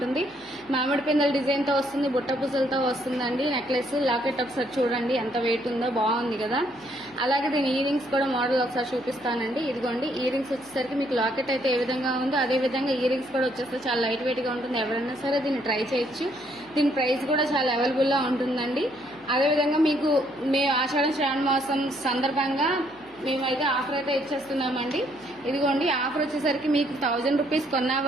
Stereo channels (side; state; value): left; noise; hum, 28 dB below the sound